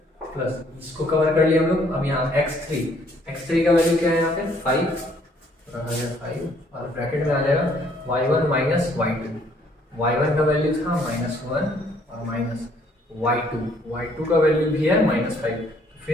प्लस इसको कवर कर लिया हम लोग। अब यहाँ x3 का वैल्यू क्या है, यहाँ पे 5 रखा गया 5 और ब्रैकेट में आ जाएगा y1 -y2। y1 का वैल्यू था -1 और y2 का वैल्यू भी है -5,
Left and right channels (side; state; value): both; normal; correlation 0.64